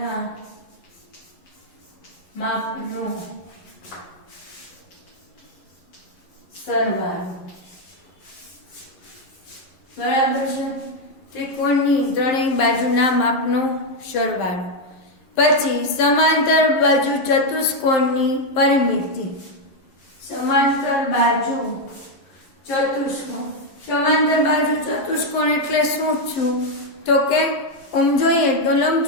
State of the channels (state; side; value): late; right; 11 ms